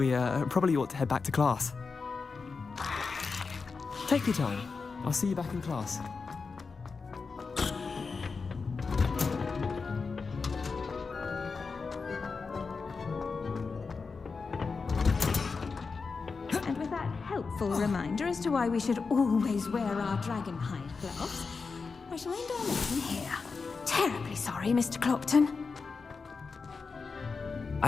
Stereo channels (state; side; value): quieter; right; 4.7 dB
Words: probably ought to head back to class. Take your time. I'll see you back in class. Helpful reminder as to why we should always wear our dragon hide gloves. I shall end our lesson here. Terribly sorry, Mr. Clopton.